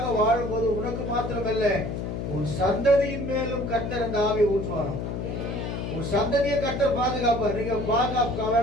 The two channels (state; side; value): noise; left; hum, 4 dB below the sound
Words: வாழும் போது உனக்கு மாத்திரமல்ல உன் சந்ததியின் மேலும் கர்த்தர் அந்த ஆவியை ஊற்றுவாராம். உன் சந்ததியை கர்த்தர் பாதுகாப்பார். நீங்க பாதுகாக்க